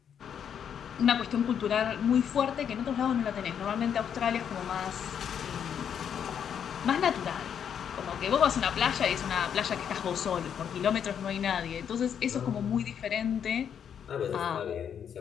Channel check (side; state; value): right; quieter; 8.2 dB